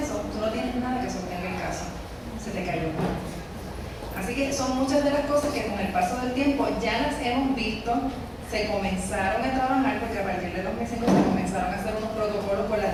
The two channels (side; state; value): both; identical; correlation 1.00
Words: tú no tienes nada que sostenga el caso, se te cayó. Así que son muchas de las cosas que con el paso del tiempo ya las hemos visto, se comenzaron a trabajar, porque a partir de 2005 se comenzaron a hacer unos protocolos con